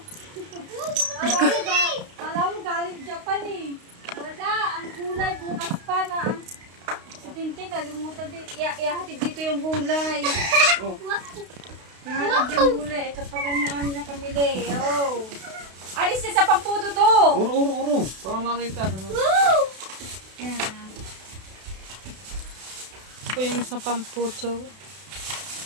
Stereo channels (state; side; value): late; left; 32 ms